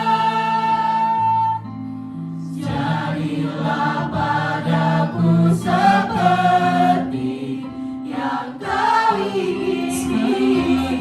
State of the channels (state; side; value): identical; both; correlation 1.00